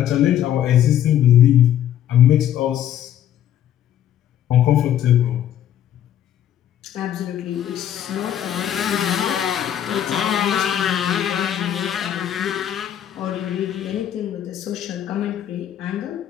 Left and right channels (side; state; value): right; quieter; 10.8 dB